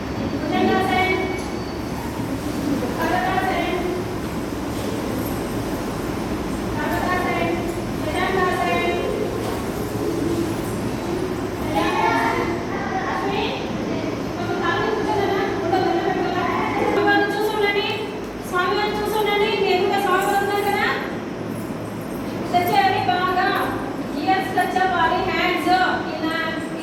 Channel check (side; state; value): both; identical; correlation 1.00